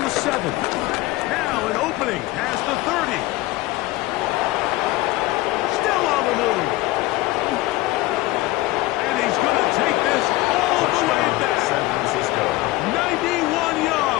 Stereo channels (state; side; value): quieter; right; 18.9 dB